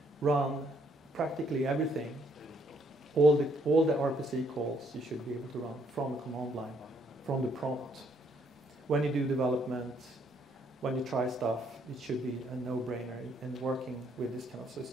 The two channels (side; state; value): both; normal; correlation 0.69